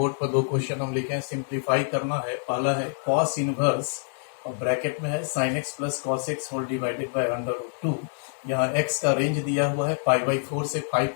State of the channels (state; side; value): silent; right; digital silence